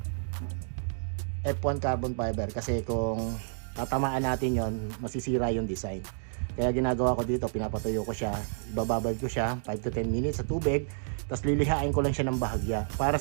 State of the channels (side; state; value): left; silent; digital silence